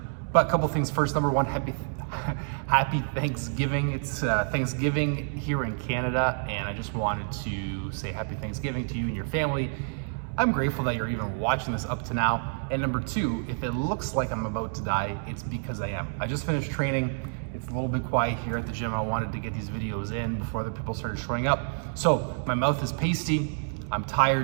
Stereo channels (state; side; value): silent; left; digital silence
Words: But a couple things first. Number one, happy Thanksgiving. It's Thanksgiving here in Canada, and I just wanted to say happy Thanksgiving to you and your family. I'm grateful that you're even watching this up to now. And number two, if it looks like I'm about to die, it's because I am. I just finished training. It's a little bit quiet here at the gym. I wanted to get these videos in before other people started showing up. So my mouth is pasty, I'm